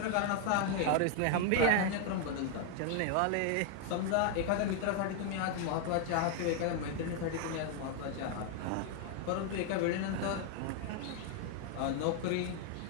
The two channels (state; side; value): different; both; correlation 0.00